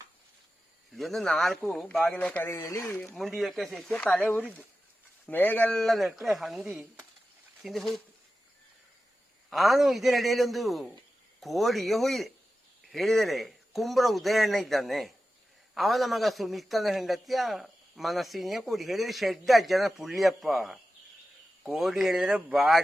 ಇದೊಂದು 4 ಬಾಗಿಲ ಕರೆಯಲ್ಲಿ ಮುಂಡಿಯಕ್ಕೆ ಸಿಕ್ಕಿ ತಲೆ ಉರಿದ್ದು ಮೇಗೆಲ್ಲ ನೆಟ್ಟರೆ ಹಂದಿ ತಿಂದು ಹೋಯಿತು. ನಾನು ಇದರಡಿಯಲ್ಲಿ ಒಂದು ಕೋಡಿಗೆ ಹೋಯಿದೆ. ಹೇಳಿದರೆ ಕುಂಬ್ರ ಉದಯಣ್ಣ ಇದ್ದಾನೆ, ಅವನ ಮಗ ಸುಮಿತ್ತನ ಹೆಂಡತಿಯ ಮನಸ್ಸಿನ ಕೋಡಿ. ಹೇಳಿದರೆ ಶೆಡ್ಡ ಅಜ್ಜನ ಪುಳ್ಳಿಯಪ್ಪ ಕೋಡಿ ಹೇಳಿದರೆ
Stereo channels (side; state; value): both; normal; correlation 0.93